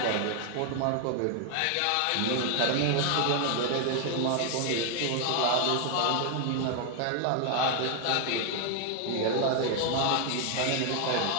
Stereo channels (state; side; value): different; both; correlation 0.00